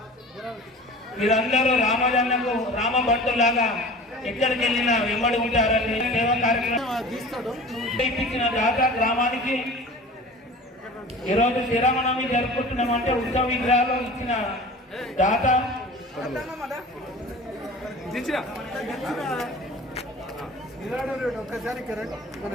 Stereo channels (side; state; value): both; normal; correlation 0.40